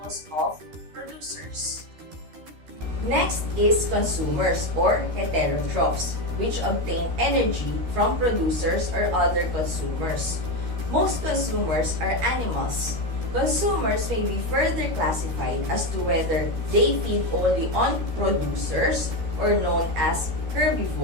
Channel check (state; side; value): late; left; 13 ms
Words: of producers. Next is consumers or heterotrophs, which obtain energy from producers or other consumers. Most consumers are animals. Consumers may be further classified as to whether they feed only on producers or known as